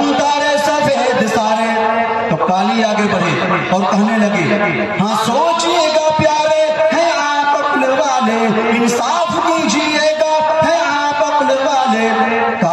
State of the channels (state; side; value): identical; both; correlation 1.00